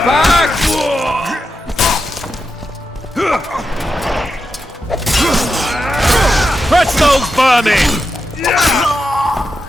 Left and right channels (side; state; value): both; normal; correlation 0.88